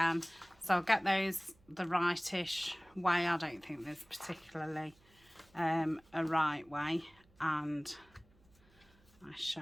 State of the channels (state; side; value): noise; right; hum, 30 dB below the sound